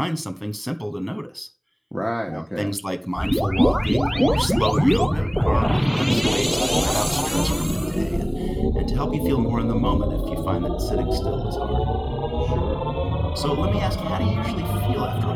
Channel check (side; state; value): both; identical; correlation 1.00